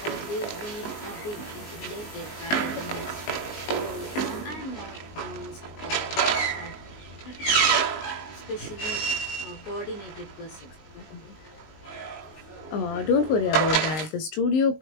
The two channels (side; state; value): right; late; 19 ms